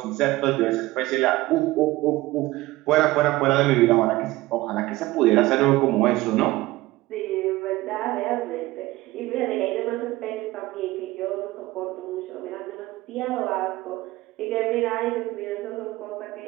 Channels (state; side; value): quieter; left; 18.7 dB